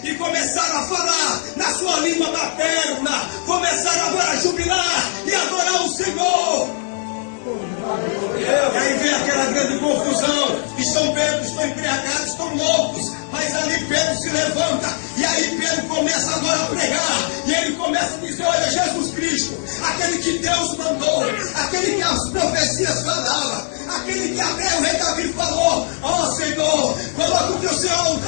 e começaram a falar na sua língua materna, começaram agora a jubilar e adorar o Senhor. E aí vem aquela grande confusão, estão bêbados, estão embriagados, estão loucos, mas ali Pedro se levanta começa a dizer, olha, Jesus Cristo, aquele que Deus mandou, aquele que as profecias falavam, aquele que até o rei Davi falou, ó Senhor, coloca o teu Senhor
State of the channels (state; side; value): silent; right; digital silence